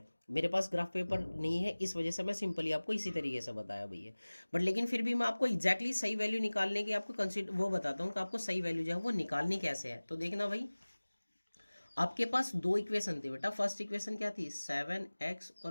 मेरे पास ग्राफ पेपर नहीं है, इस वजह से मैं सिंपली आपको इसी तरीके से बताया भैया, बट लेकिन फिर भी मैं आपको एग्जैक्टली सही वैल्यू निकालने की आपको कंसिडर वो बताता हूँ कि आपको सही वैल्यू जो है वो निकालनी कैसे है। तो देखना भाई आपके पास दो इक्वेशन थी बेटा, फर्स्ट इक्वेशन क्या थी 7x और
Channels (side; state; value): both; inverted; correlation -1.00